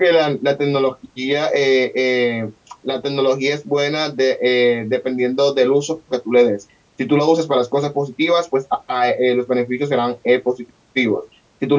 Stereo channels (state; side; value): identical; both; correlation 1.00